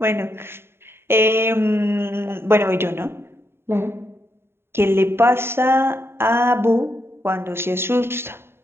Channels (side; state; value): left; late; 0.11 ms